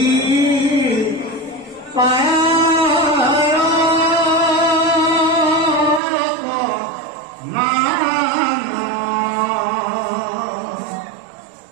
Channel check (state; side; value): drops out; left; at 6.0 s